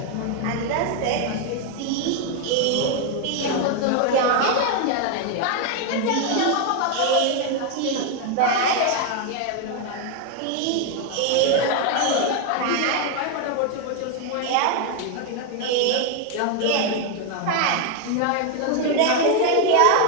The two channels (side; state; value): both; different; correlation 0.01